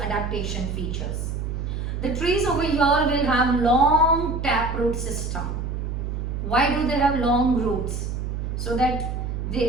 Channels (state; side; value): noise; right; hum, 4 dB below the sound